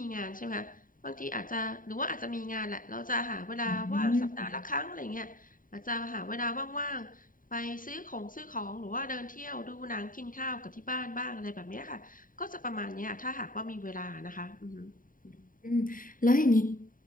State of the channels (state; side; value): late; right; 0.40 ms